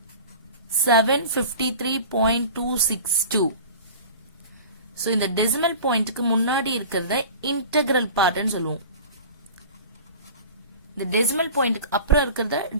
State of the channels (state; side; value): inverted; both; correlation -0.39